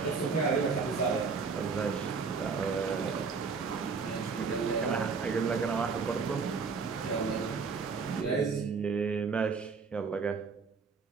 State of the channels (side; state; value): left; quieter; 5.1 dB